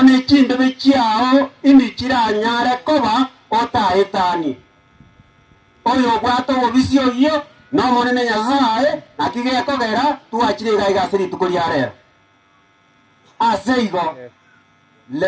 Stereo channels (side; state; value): both; identical; correlation 1.00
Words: ne chimbebe chiao indikiranyare koba otaetani oyo obwate obobisi oyo n'omonene Nyasaye naki gekogera twachire iga iga ase rituko ria rero ase igo